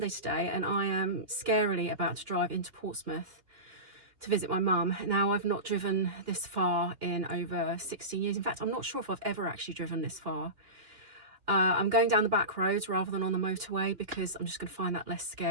today, and I am scarily about to drive into Portsmouth to visit my mum. Now, I've not driven this far in over 16 years. In fact, I'm not sure if I've ever actually driven this far. I'm going down the back roads rather than on the motorway because I'm just going to find that less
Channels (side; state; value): left; late; 3.0 ms